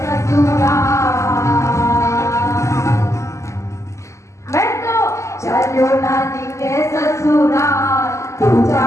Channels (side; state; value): right; late; 0.14 ms